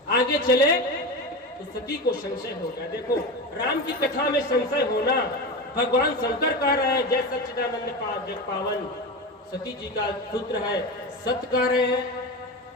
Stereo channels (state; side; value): normal; both; correlation 0.23